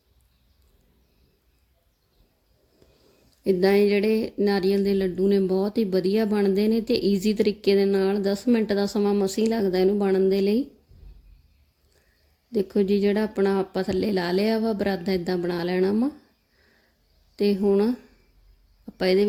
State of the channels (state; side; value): identical; both; correlation 1.00